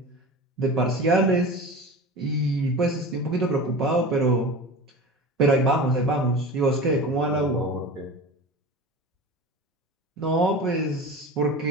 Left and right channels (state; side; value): normal; both; correlation 0.33